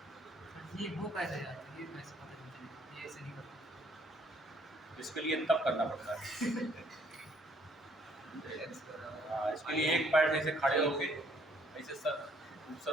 ये वो कैसे यार, ये कैसे पता नहीं चलेगा, ये ऐसे नहीं करता। इसके लिए तब करना पड़ता है। हाँ, इसके लिए एक पैर ऐसे खड़े होके ऐसे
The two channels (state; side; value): normal; both; correlation 0.64